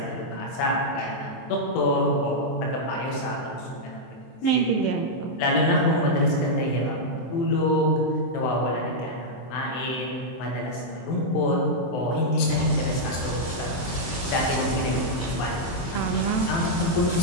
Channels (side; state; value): right; late; 23 ms